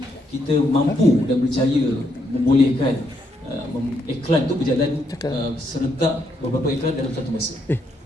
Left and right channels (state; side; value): normal; both; correlation 0.76